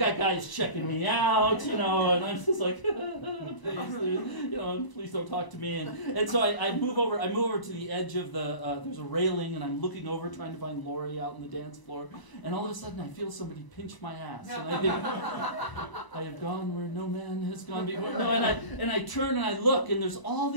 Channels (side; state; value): right; late; 1.0 ms